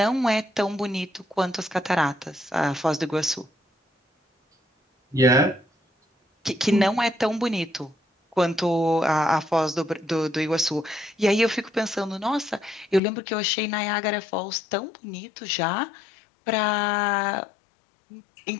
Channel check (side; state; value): right; drops out; at 13.0 s